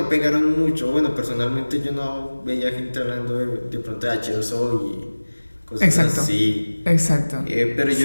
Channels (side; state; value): both; inverted; correlation -1.00